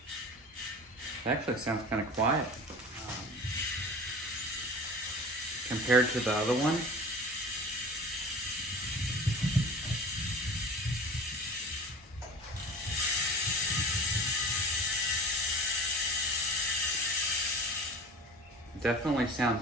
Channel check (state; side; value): normal; both; correlation 0.37